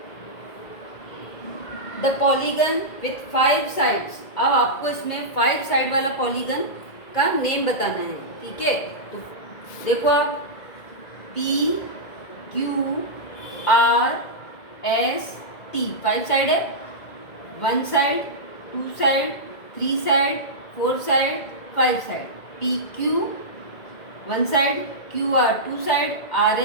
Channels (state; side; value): late; right; 2.0 ms